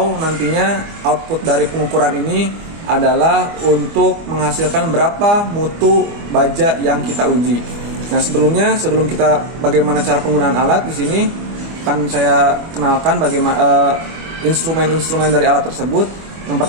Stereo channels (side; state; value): left; late; 25 ms